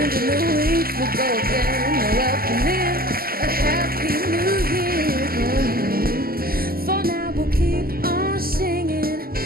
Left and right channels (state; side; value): late; left; 0.43 ms